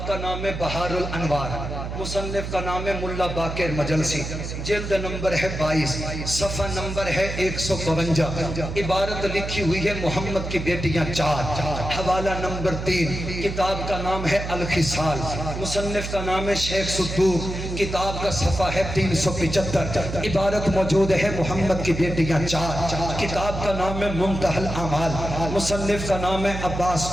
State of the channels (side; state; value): right; noise; hum, 6 dB below the sound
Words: کا نام ہے بہار الانوار. مصنف کا نام ہے ملا باقر مجلسی. جلد نمبر ہے 22. صفحہ نمبر ہے 152. عبارت لکھی ہوئی ہے محمد کی بیٹیاں 4. حوالہ نمبر 3. کتاب کا نام ہے الخصال. مصنف کا نام ہے شیخ صدوق. کتاب کا صفحہ ہے 375. عبارت موجود ہے محمد کی بیٹیاں 4. کتاب کا نام ہے منتہی الاعمال. مصنف کا نام ہے عباس